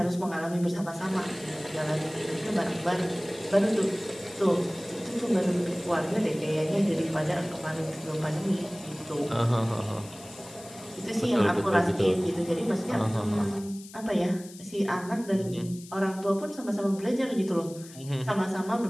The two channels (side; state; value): left; noise; hiss, 18 dB below the sound